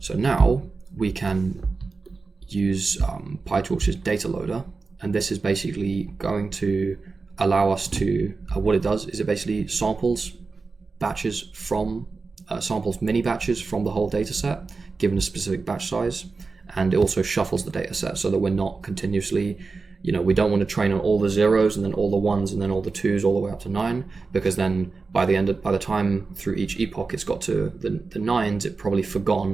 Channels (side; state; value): left; quieter; 4.2 dB